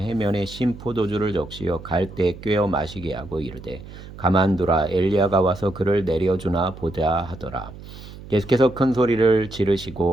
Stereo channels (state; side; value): noise; right; hum, 15 dB below the sound